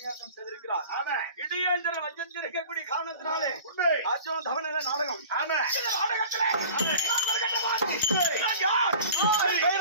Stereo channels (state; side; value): inverted; both; correlation -0.42